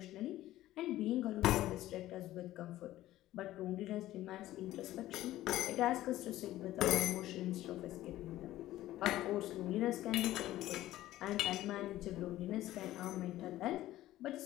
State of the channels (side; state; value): right; quieter; 14.9 dB